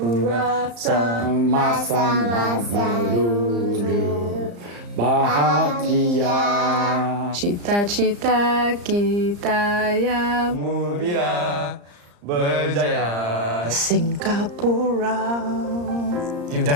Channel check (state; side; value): late; left; 34 ms